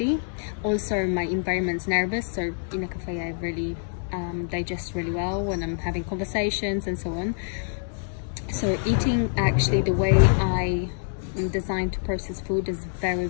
Also my environment's nervous, so in a cafe I really digest really well when I'm having conversations and so on. So eating, actually the way I am designed to process food is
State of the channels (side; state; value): right; silent; digital silence